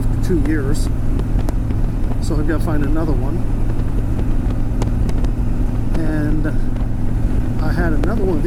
2 years. So I've got to find another one. And I had another one of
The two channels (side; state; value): both; identical; correlation 1.00